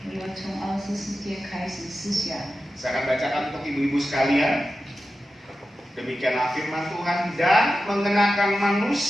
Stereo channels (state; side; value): normal; both; correlation 0.92